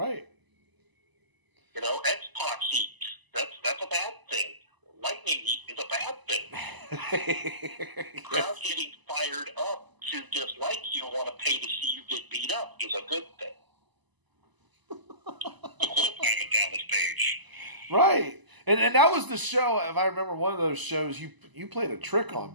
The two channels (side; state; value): left; late; 1.0 ms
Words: X-Pac heat. That's a bad thing. Lightning heat is a bad thing. Crowd getting fired up to dislike you and want to pay to see you get beat up is a good thing. Simon Dallas Page. Right. And that was the show, if I remember one of those shows, you played a trick on